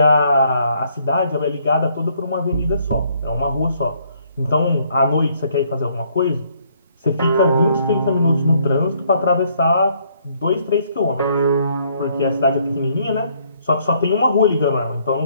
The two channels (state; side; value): inverted; both; correlation -0.67